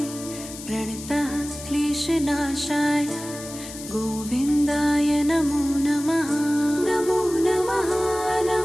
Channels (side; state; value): left; noise; hiss, 13 dB below the sound